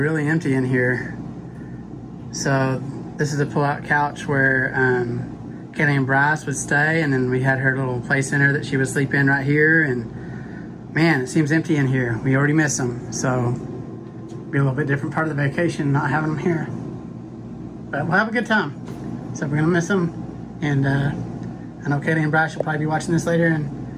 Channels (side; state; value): both; identical; correlation 1.00